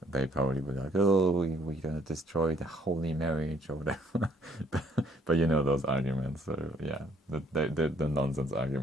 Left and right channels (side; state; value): both; normal; correlation 0.65